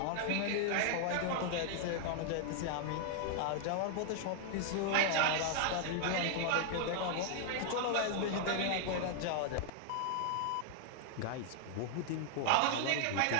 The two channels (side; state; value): both; different; correlation 0.00